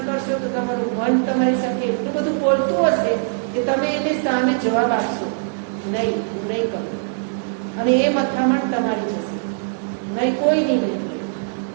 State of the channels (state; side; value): silent; left; digital silence